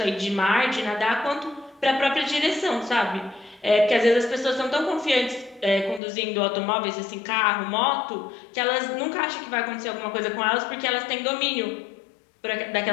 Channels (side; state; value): right; drops out; at 6.0 s